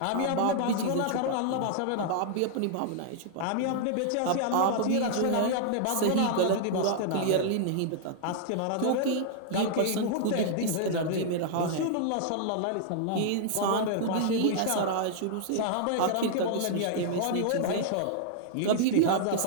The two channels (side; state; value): both; different; correlation -0.01